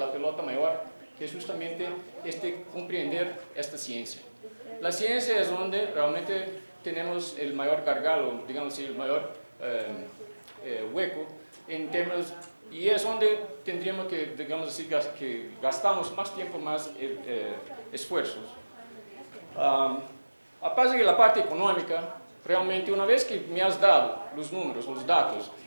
pelota mayor, que es justamente comprender esta ciencia. La ciencia es donde realmente tenemos el mayor gargalo, digamos así, el mayor hueco en términos, y es donde tendríamos que, digamos así, que gastamos más tiempo, más esfuerzos. Aparte de la parte económica, realmente una vez que me has dado los números, los datos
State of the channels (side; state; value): both; inverted; correlation -1.00